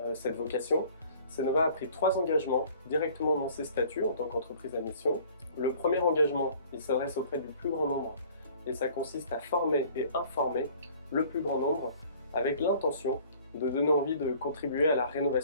cette vocation, Cnova a pris 3 engagements directement dans ses statuts en tant qu'entreprise à mission. Le premier engagement, il s'adresse auprès du plus grand nombre et ça consiste à former et informer le plus grand nombre avec l'intention de donner envie de contribuer à la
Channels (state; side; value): inverted; both; correlation -0.52